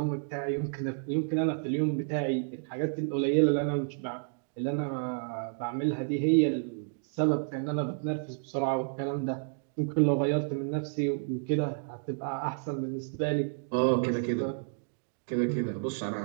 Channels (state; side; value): silent; left; digital silence